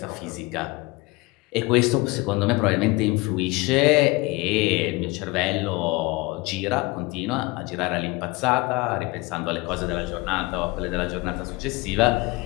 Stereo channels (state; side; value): quieter; right; 23.1 dB